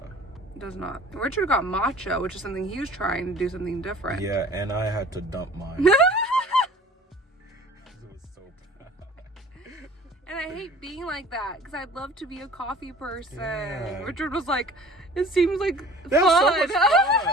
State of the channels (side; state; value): both; normal; correlation 0.46